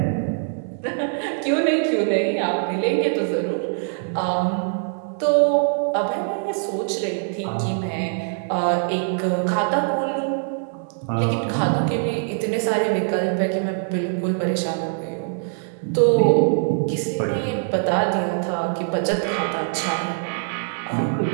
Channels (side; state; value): left; silent; 63 dB below the other